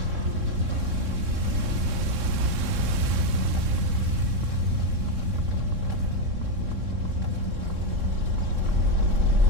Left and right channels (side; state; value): left; late; 3.6 ms